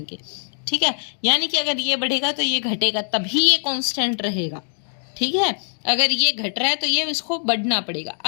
के। ठीक है, यानी कि अगर ये बढ़ेगा तो ये घटेगा, तभी ये कांस्टेंट रहेगा। ठीक है, अगर ये घट रहा है तो ये इसको बढ़ना पड़ेगा।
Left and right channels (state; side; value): silent; right; digital silence